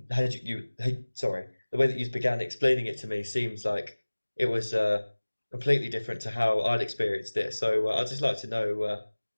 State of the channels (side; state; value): both; inverted; correlation -1.00